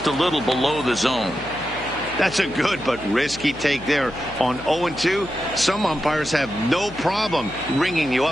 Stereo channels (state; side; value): noise; left; hum, 17 dB below the sound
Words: a little below the zone. That's a good but risky take there on 0-2. Some umpires have no problem ringing you